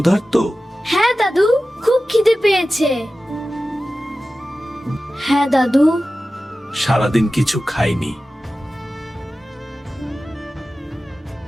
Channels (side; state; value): both; normal; correlation 0.95